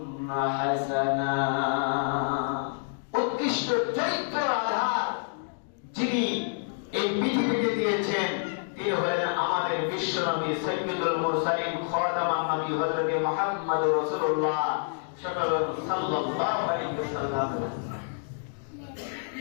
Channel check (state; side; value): silent; right; digital silence